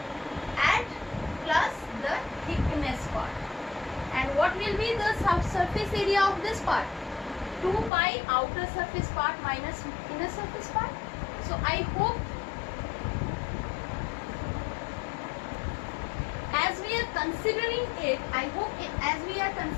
and plus the thickness part. And what will be the surface area of this part? 2 pi outer surface part minus inner surface part. So I hope as we are considering it, as we are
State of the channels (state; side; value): drops out; right; at 7.9 s